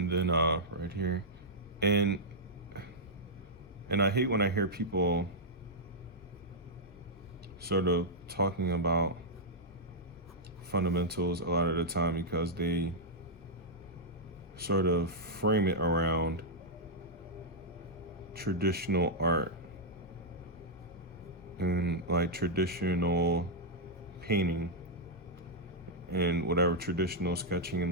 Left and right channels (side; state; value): both; normal; correlation -0.07